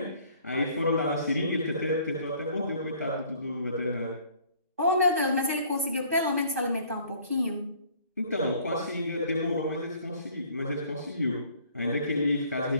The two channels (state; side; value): inverted; both; correlation -0.57